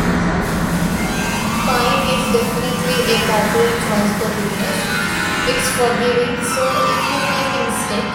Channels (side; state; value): both; identical; correlation 1.00